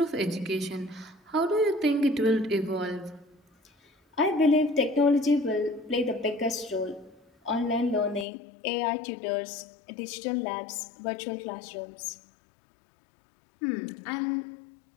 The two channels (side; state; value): right; drops out; at 8.2 s